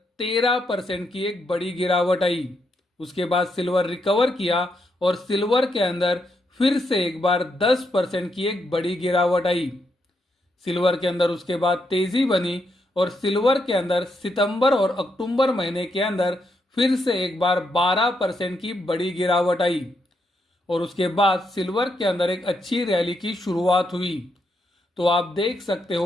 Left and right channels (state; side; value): normal; both; correlation 0.79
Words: 13% की एक बड़ी गिरावट आई। उसके बाद सिल्वर रिकवर किया और सिल्वर के अंदर फिर से एक बार 10% की एक बड़ी गिरावट आई। सिल्वर के अंदर उसके बाद तेजी बनी और सिल्वर के अंदर सितंबर और अक्टूबर महीने के अंदर फिर से एक बार 12% की बड़ी गिरावट आई। और उसके बाद सिल्वर के अंदर एक अच्छी रैली की शुरुआत हुई। तो आप देख सकते